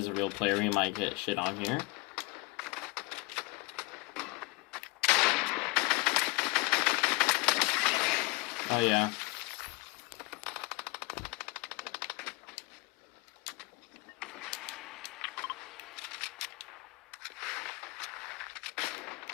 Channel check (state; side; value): quieter; right; 26.6 dB